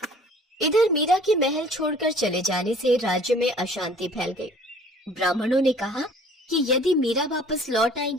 इधर मीरा के महल छोड़कर चले जाने से राज्य में अशांति फैल गई। ब्राह्मणों ने कहा कि यदि मीरा वापस लौट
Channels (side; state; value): both; normal; correlation 0.52